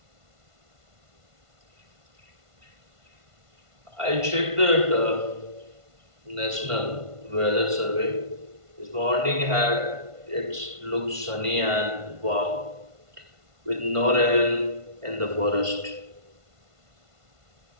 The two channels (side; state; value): left; late; 1.5 ms